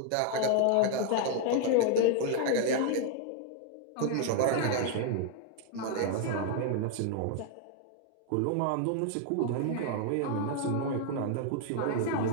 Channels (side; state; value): both; different; correlation 0.00